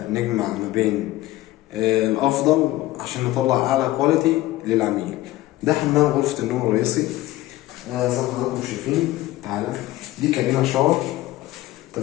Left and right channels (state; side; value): quieter; right; 16.7 dB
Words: نجمع ما بين الأفضل عشان نطلع أعلى كواليتي للعميل. ده حمام غرفة النوم الرئيسي زي ما حضراتكم شايفين. تعالى دي كابينة شاور،